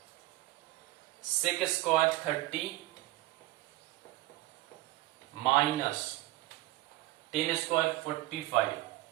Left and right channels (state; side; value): quieter; left; 18.4 dB